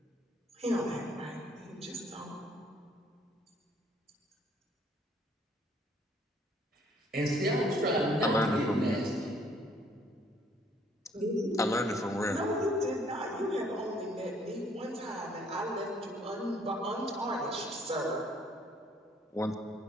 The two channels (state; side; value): normal; both; correlation 0.62